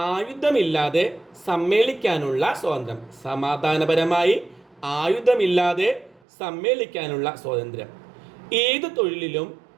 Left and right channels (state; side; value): drops out; left; at 6.2 s